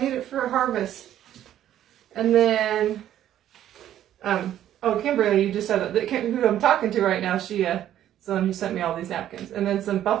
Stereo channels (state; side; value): quieter; left; 11.6 dB